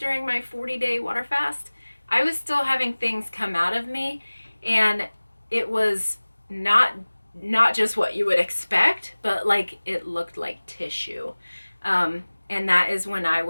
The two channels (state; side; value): inverted; both; correlation -1.00